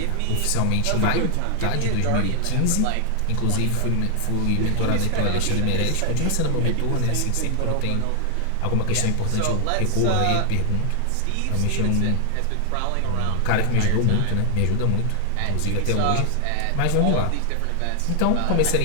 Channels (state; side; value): different; both; correlation 0.00